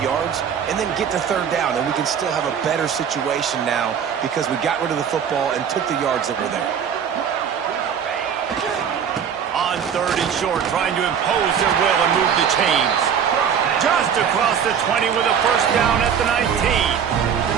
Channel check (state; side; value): quieter; left; 7.8 dB